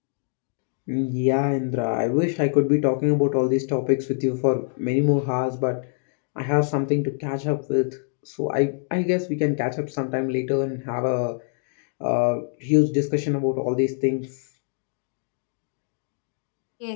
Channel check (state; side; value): silent; right; 62 dB below the other